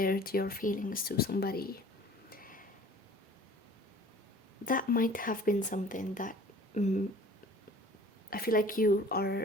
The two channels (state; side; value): normal; both; correlation 0.48